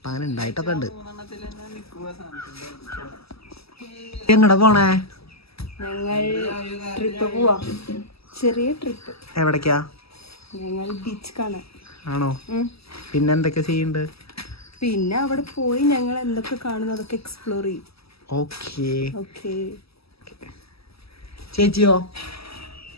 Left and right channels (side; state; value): right; late; 0.77 ms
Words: അങ്ങനെ ഉണ്ടായിട്ടൊക്കെ ഉണ്ട്. എങ്ങടെ പോണേ? ഞങ്ങൾ ട്രിപ്പ് പോവാം. ചെറിയ ട്രിപ്പ്. എവിടേക്കാ? ഞങ്ങൾ ബീച്ച് കാണാൻ. ആണോ? പിന്നെ എന്തൊക്കെ ചെയ്യുന്നുണ്ട്? പിന്നെ അവിടെ പോയി ഞങ്ങൾ എന്തൊക്കെ കാണുന്നു അതൊക്കെ എക്സ്പ്ലോർ ചെയ്യും. Okay okay. ചേച്ചിയോ?